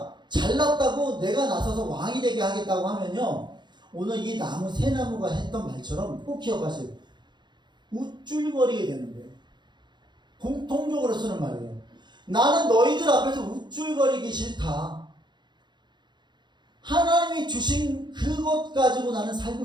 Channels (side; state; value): left; late; 0.22 ms